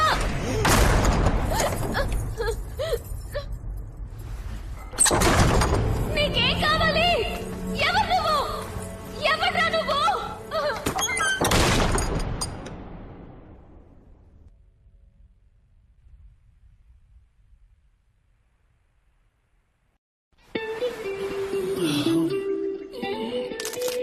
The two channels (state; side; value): identical; both; correlation 1.00